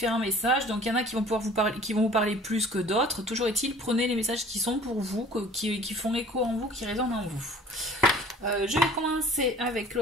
messages, donc il y en a qui vont pouvoir vous parler, qui vont vous parler plus que d'autres. Toujours est-il, prenez les messages qui sont pour vous, qui font écho en vous, qui résonnent en vous. Je vais commencer avec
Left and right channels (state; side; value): normal; both; correlation 0.49